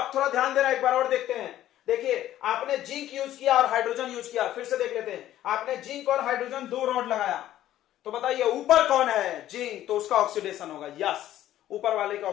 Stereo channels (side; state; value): right; quieter; 13.0 dB